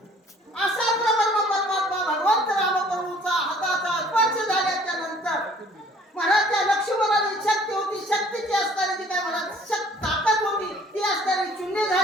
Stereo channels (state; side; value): normal; both; correlation 0.55